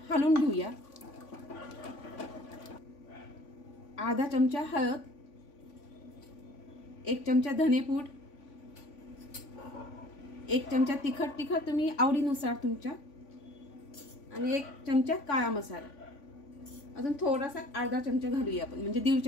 हलवून घेऊया. अर्धा चमचा हळद, 1 चमचा धनेपूड, 1 चमचा तिखट तुम्ही आवडीनुसार तुमच्या, आणि 1 चमचा काळा मसाला. अजून थोडासा अर्धा चमचा घालूया आपण, म्हणजे 1.5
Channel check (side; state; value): right; late; 3.5 ms